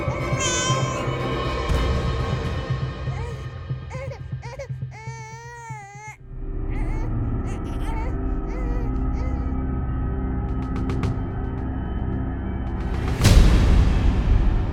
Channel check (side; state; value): both; identical; correlation 1.00